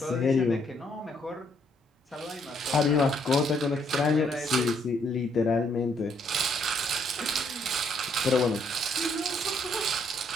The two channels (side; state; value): both; normal; correlation 0.70